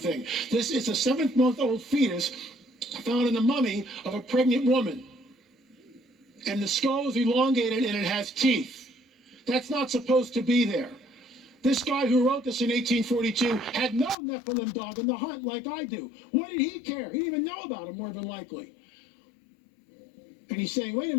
This is a 7-month-old fetus found in the mummy of a pregnant woman. And the skull is elongated and it has teeth. That's not supposed to be there. This guy who wrote this in 1842 had no Nephilim dog in the hunt like I do. What did he care? He didn't even know about him, more than likely. And he's saying, wait a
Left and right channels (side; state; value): right; drops out; at 14.2 s